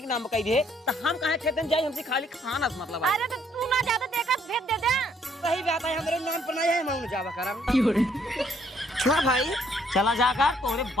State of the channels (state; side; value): normal; both; correlation 0.67